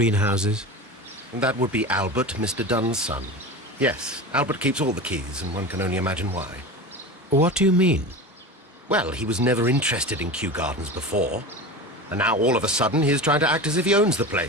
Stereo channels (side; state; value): both; normal; correlation 0.29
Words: That would be Albert, Mr. Dunn's son. Yes, Albert keeps all the keys, and one can only imagine why. What do you mean? Well, he was never interested in Kew Gardens before, and now all of a sudden he is trying to act as if he owns the